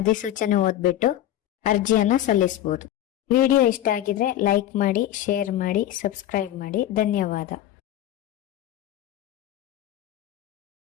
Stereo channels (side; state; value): right; quieter; 12.6 dB